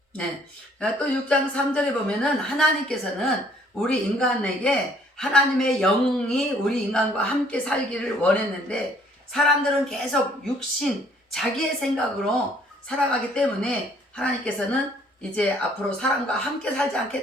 네, 또 6장 3절에 보면은 하나님께서는 우리 인간에게 하나님의 영이 우리 인간과 함께 살기를 원했는데 사람들은 계속 육신, 자기의 생각으로 살아가기 때문에 하나님께서는 이제 앞으로 사람과 함께 살지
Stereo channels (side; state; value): both; normal; correlation 0.61